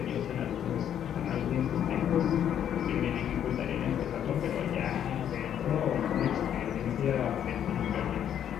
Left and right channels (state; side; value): quieter; right; 9.7 dB